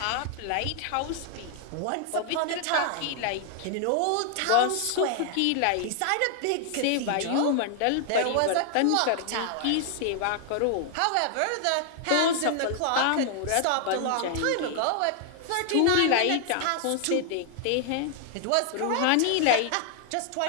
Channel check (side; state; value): both; different; correlation 0.00